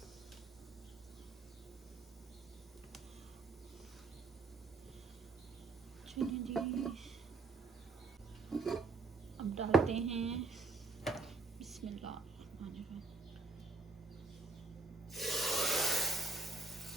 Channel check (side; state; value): left; quieter; 3.9 dB